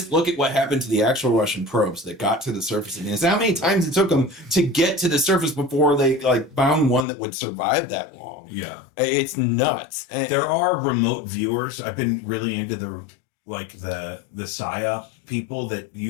look at what happened to the actual Russian probes that got to the surface of Venus, how many times it took them to get to the surface before they found one that would survive that long. Yeah, it's nuts. There are remote viewers. I've been really into the PSYOP people that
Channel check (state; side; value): drops out; right; at 7.1 s